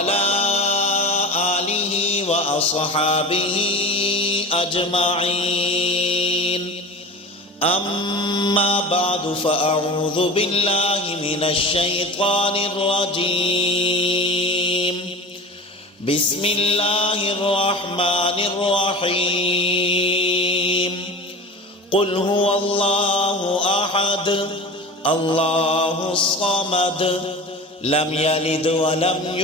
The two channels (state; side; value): normal; both; correlation 0.33